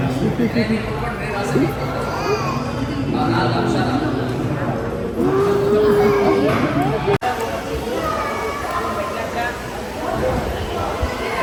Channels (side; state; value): both; identical; correlation 1.00